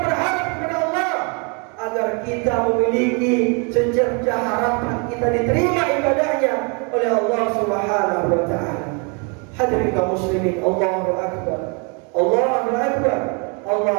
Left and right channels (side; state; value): left; quieter; 34.2 dB